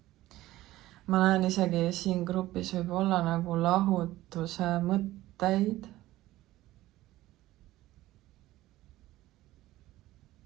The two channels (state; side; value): quieter; left; 16.2 dB